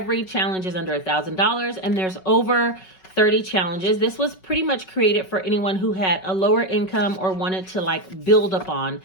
challenge is under $1,000, and there's over 30 challenges. This was pretty much created for anyone who had a lower income or wanted to like build upon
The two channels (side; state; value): right; late; 5.3 ms